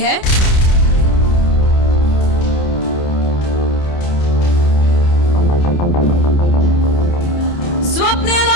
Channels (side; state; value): right; late; 29 ms